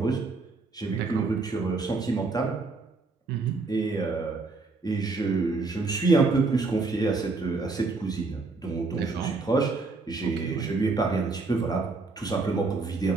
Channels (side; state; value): left; quieter; 3.8 dB